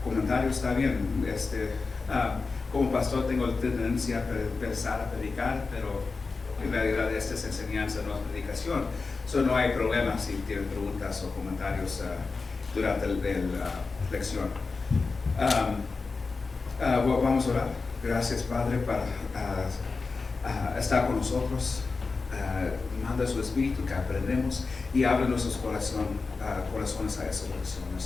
comentarios, está bien. Como pastor tengo la tendencia a pensar, a predicar, pero en realidad esta es enseñanza, no es predicación. No hay problema si tienen preguntas o comentarios durante la lección. Vamos a orar. Gracias, Padre, para estar con nosotros. Manda su Espíritu que aprendemos y abre nuestros corazones a esas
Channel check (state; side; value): quieter; right; 4.2 dB